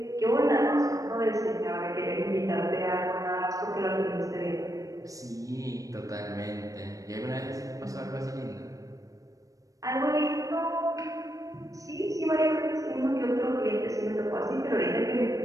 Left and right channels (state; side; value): late; left; 0.16 ms